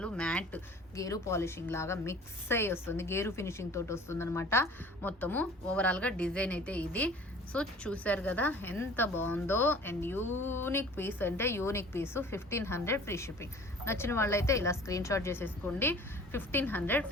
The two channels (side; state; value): both; normal; correlation 0.47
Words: మ్యాట్ గేరు పాలిషింగ్ లాగా మిక్స్ అయ్యి వస్తుంది, గేరు ఫినిషింగ్ తోటి వస్తుంది అనమాట. మొత్తము ఓవరాల్గా డిజైన్ అయితే ఇది. సో చూసారు కదా ఎంత బాగుందో. అండ్ యూనిక్ పీస్ అంటే యూనిక్ పీసు. 1500 ఫ్రీ షిప్పింగ్. నచ్చిన వాళ్ళైతే ఇలా స్క్రీన్ షాట్ చేసేసుకోండి. 1500